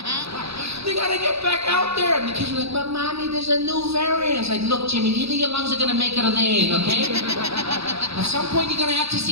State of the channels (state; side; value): late; left; 0.78 ms